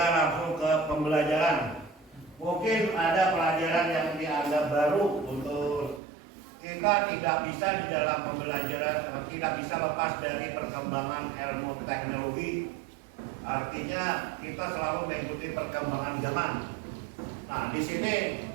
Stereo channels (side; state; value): left; drops out; at 6.0 s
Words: langsung ke pembelajaran. Mungkin ada pelajaran yang dianggap baru untuk kita tidak bisa di dalam pembelajaran, tidak bisa lepas dari perkembangan ilmu teknologi. Artinya kita selalu mengikuti perkembangan zaman. Nah, di sini